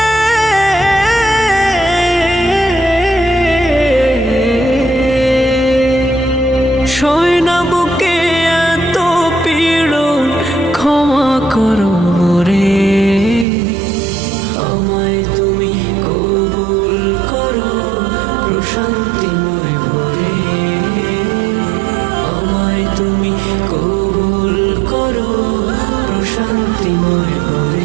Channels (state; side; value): drops out; left; at 13.5 s